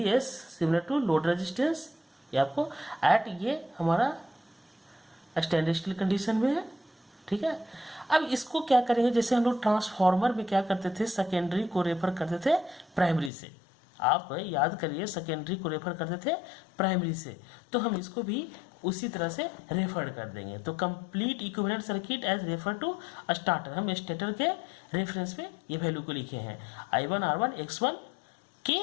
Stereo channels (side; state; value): right; drops out; at 13.3 s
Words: S similar to load resistance, ये आपको एट ये हमारा स्टैंड स्टिल कंडीशन में है, ठीक है। अब इसको क्या करेंगे, जैसे हम लोग ट्रांसफार्मर में क्या करते थे, सेकेंडरी को रेफर करते थे प्राइमरी से, आप याद करिए सेकेंडरी को रेफर करते थे प्राइमरी से, तो हम इसको भी उसी तरह से रेफर कर देंगे। तो complete equivalent circuit as refer to starter, हम स्टेटर के रेफरेंस में ये वैल्यू को लिखे हैं I1 R1 X1 के